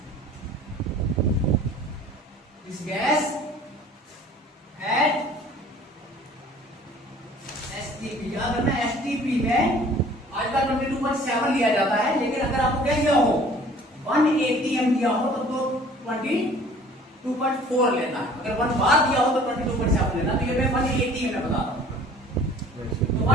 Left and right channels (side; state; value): both; normal; correlation 0.50